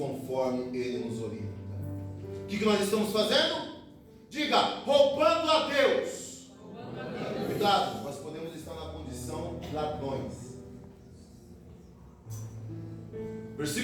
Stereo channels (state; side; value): identical; both; correlation 1.00